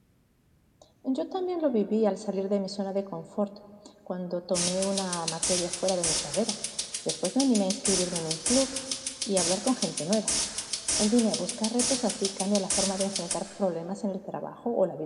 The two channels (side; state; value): both; identical; correlation 1.00